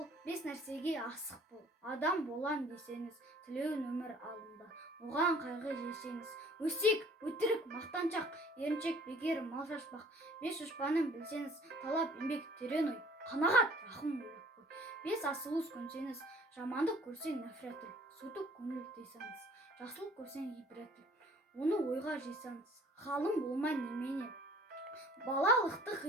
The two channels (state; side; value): normal; both; correlation 0.54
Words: 5 нәрсеге асық бол. Адам болан десеңіз, тілеуін өмір алында, оған қайғы жесеңіз. Өсек, өтірік, мақтаншақ, еріншек, бекер, мал шашпақ. 5 дұшпанын білсеңіз, талап, еңбек, терең ой, қанағат, рахым ойлап қой. 5 асылуыз көнсеңіз, жамандық көрсең нәфрет ой, сутық көңіл тыйсаңыз, жақсылық көрсең ибрет ой, оны ойға жисаңыз, ғалым болмай немене. Балалықты